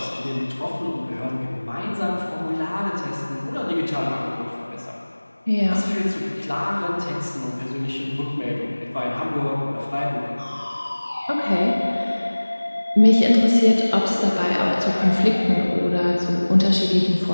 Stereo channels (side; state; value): both; inverted; correlation -1.00